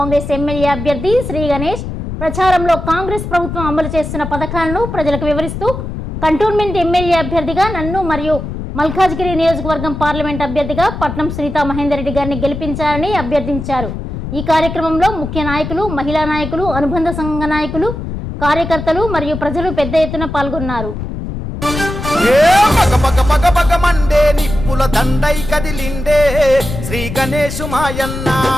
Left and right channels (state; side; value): noise; left; rumble, 7 dB below the sound